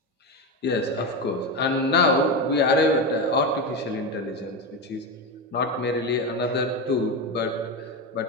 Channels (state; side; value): normal; both; correlation 0.16